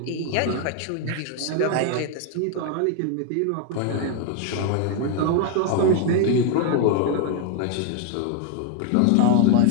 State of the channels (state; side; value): different; both; correlation 0.00